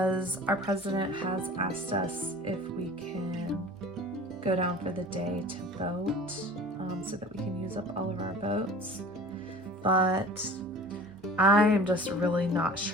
our president has asked us if we can go down for the day to vote, so that we can use up all of our votes. But I am just really not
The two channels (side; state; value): both; normal; correlation 0.42